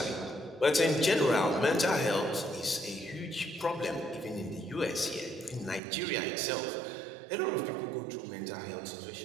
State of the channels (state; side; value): drops out; left; at 5.8 s